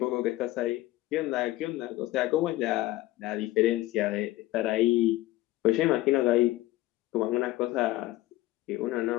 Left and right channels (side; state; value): right; quieter; 16.9 dB